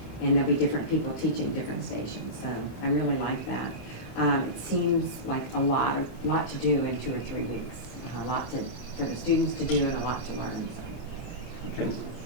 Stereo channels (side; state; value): right; late; 29 ms